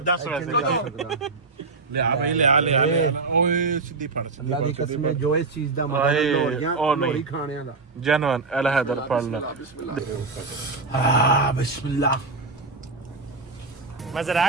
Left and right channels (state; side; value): quieter; left; 3.9 dB